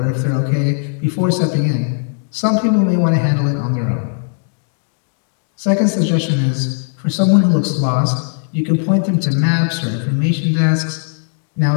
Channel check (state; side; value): silent; right; 62 dB below the other